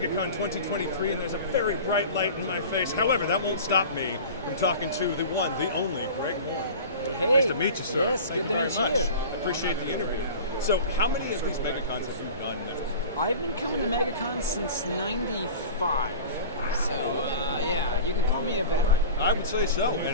2023, and there's a very bright light in my face. However, that won't stop me from talking to the one, the only, Greg Moore. Hey. Nice to meet you, sir. Yes, Thank good you to very meet much. you. I appreciate the interview. So, how many of these MegaCons have you done now? I've been coming to MegaCon since '95, so yeah, you can call me a veteran. I would say so,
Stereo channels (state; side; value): inverted; both; correlation -0.37